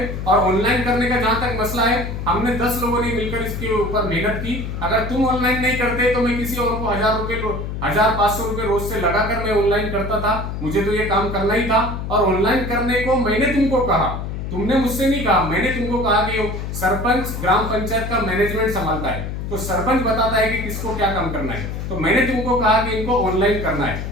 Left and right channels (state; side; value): noise; left; hum, 5 dB below the sound